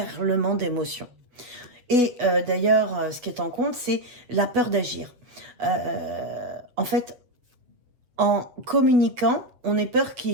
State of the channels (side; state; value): left; late; 8.1 ms